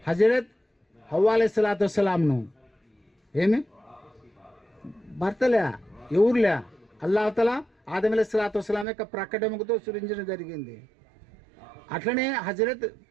హజరత్ హవ్వా అలైహిస్సలాతు వస్సలాంను ఏమి భర్తలే, ఎవరులే. అల్లాహుతాలా ఆదం అలైహిస్సలాతు వస్సలాం యొక్క ప్రకటనతో సృజించడం జరిగింది. అట్లనే హజరత్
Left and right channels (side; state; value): left; drops out; at 8.8 s